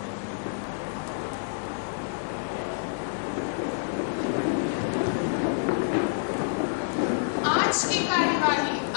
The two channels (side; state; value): right; silent; digital silence